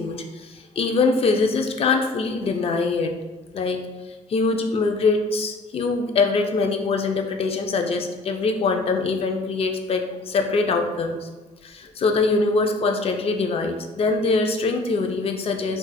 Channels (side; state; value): right; quieter; 3.4 dB